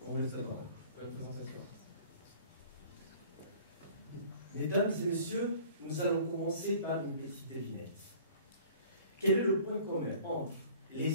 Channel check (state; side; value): inverted; both; correlation -0.49